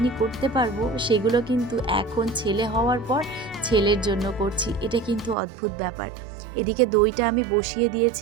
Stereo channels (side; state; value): left; drops out; at 5.4 s